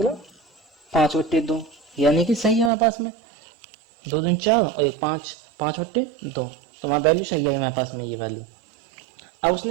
5/2, यानी कि सही है हमारे पास में 2 दूनी 4 और 1 5, 5/2, तो हमारा वैल्यू सही है हमारे पास में ये वैल्यू। अब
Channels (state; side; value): drops out; left; at 2.7 s